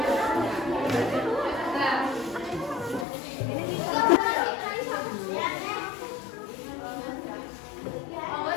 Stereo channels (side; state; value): right; drops out; at 3.1 s